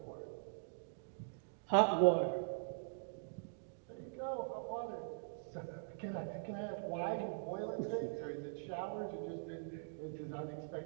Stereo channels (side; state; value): left; silent; digital silence